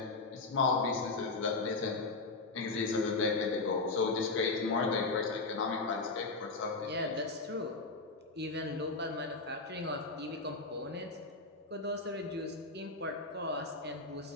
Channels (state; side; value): quieter; right; 3.6 dB